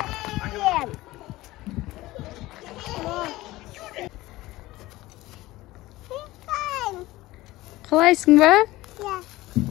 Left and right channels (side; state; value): right; quieter; 18.1 dB